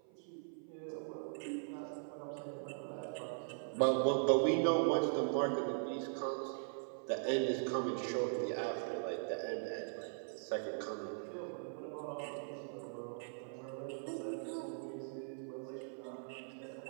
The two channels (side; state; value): left; silent; 51 dB below the other